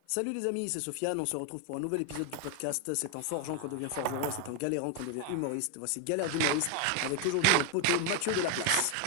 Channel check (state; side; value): different; both; correlation 0.01